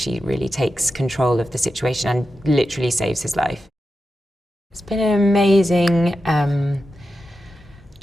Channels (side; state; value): both; normal; correlation 0.90